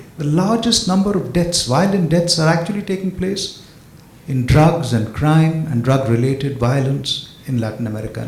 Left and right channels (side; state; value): both; identical; correlation 1.00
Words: the largest number of deaths, violent deaths, are actually taking place in drugs and crime and drug-related violence in Latin America